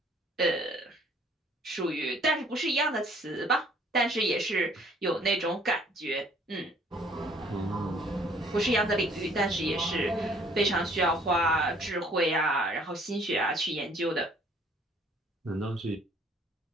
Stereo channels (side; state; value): both; normal; correlation 0.59